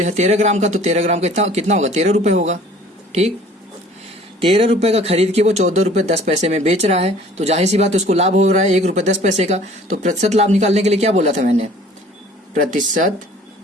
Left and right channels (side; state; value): both; normal; correlation 0.51